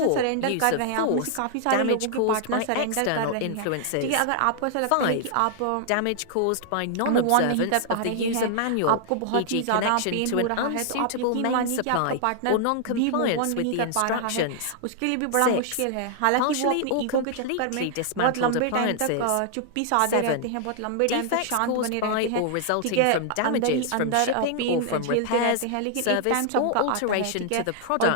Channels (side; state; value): both; different; correlation -0.01